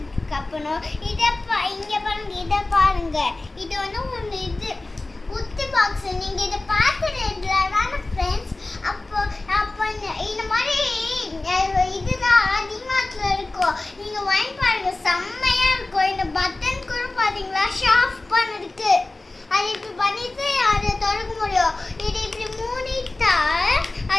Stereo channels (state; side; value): quieter; right; 3.0 dB